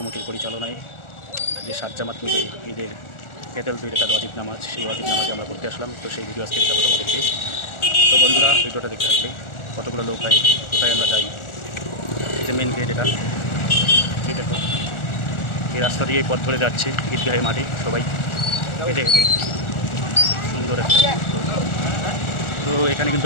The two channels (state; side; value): late; right; 1.4 ms